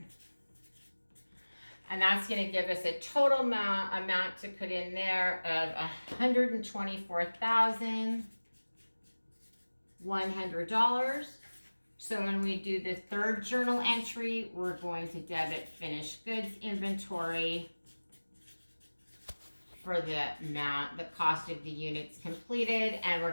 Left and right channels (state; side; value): inverted; both; correlation -1.00